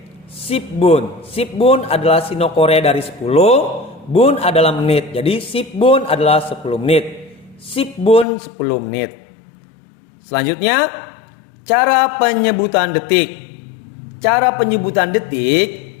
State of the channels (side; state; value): right; drops out; at 8.2 s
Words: Sip bun. Sip bun adalah Sino Korea dari 10. Bun adalah menit. Jadi sip bun adalah 10 menit. Sip bun 10 menit. Selanjutnya, cara penyebutan detik. Cara penyebutan detik